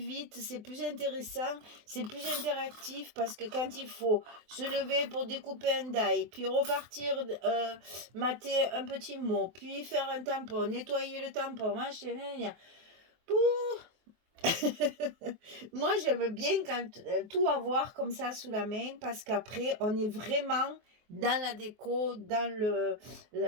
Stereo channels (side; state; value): left; late; 24 ms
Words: c'est plus intéressant, c'est plus interactif parce que quand il faut se lever pour découper un die, puis repartir mater un petit mot, puis faire un tampon, nettoyer le tampon, machin, moi j'aime bien quand tout avoir comme ça sous la main parce qu'après on est vraiment dans la déco, dans